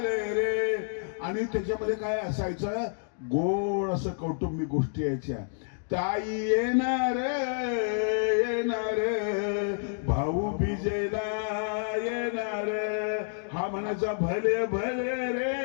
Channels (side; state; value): right; silent; digital silence